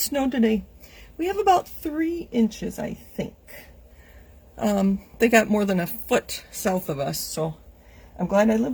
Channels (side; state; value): both; identical; correlation 1.00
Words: snowed today. We have about 3 inches, I think. They got more than a foot south of us, so I'm glad I live